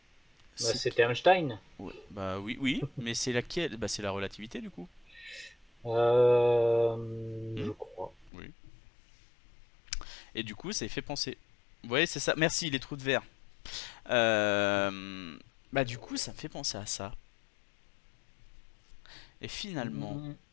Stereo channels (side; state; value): right; drops out; at 8.3 s